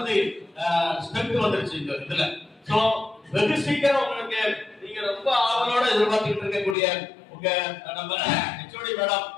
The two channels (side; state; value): right; drops out; at 6.8 s